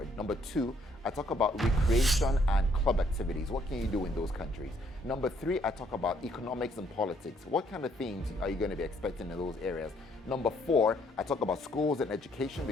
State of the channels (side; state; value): both; normal; correlation 0.67